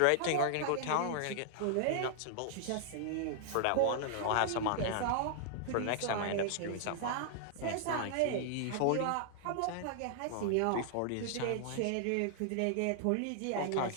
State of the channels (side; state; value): both; different; correlation -0.01